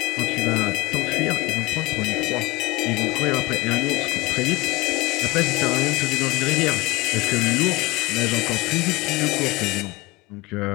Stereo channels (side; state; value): right; quieter; 21.7 dB